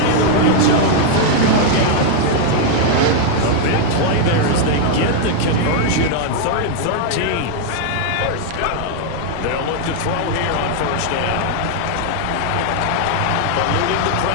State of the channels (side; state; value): both; different; correlation 0.00